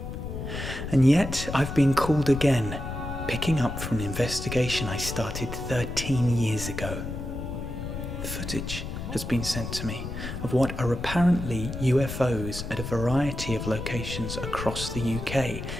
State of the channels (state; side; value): noise; left; rumble, 7 dB below the sound